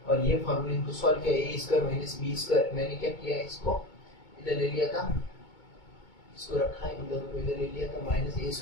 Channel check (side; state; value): right; late; 2.2 ms